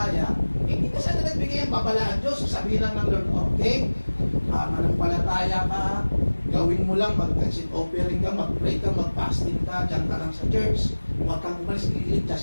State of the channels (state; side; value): inverted; both; correlation -1.00